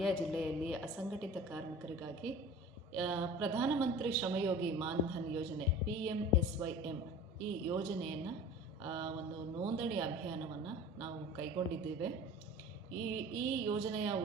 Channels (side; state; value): both; normal; correlation 0.40